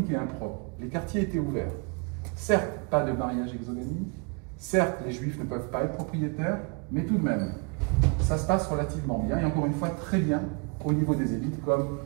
et impropre. Les quartiers étaient ouverts. Certes, pas de mariage exogamique, certes, les juifs ne peuvent pas être propriétaires, mais tout de même, ça se passe relativement bien, et encore une fois, très bien au niveau des élites, comme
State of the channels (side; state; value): left; quieter; 33.9 dB